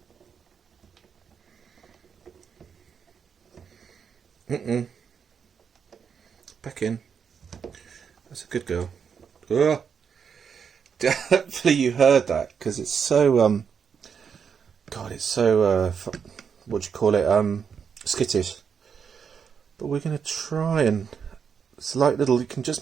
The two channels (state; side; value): quieter; left; 6.8 dB